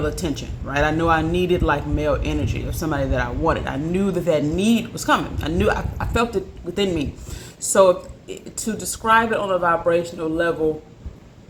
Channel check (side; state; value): both; identical; correlation 1.00